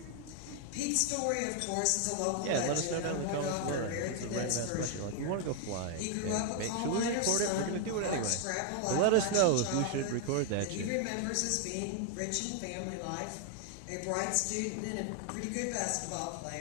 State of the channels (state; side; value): different; both; correlation 0.00